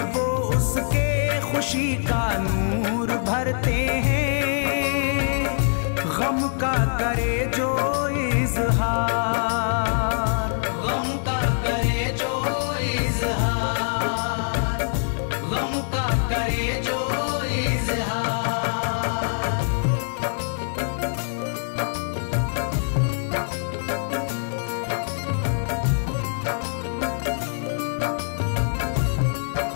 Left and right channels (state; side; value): silent; right; 63 dB below the other